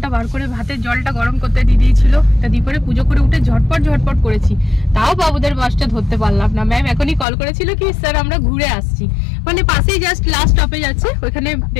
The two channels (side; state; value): right; drops out; at 7.2 s